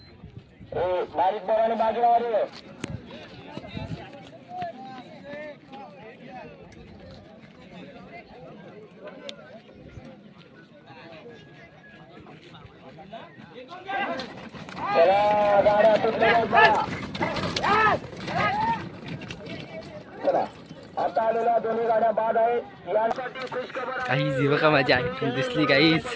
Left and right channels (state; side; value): identical; both; correlation 1.00